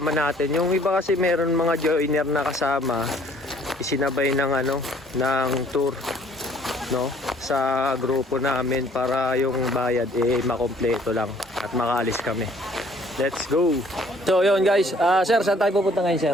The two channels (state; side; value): normal; both; correlation 0.58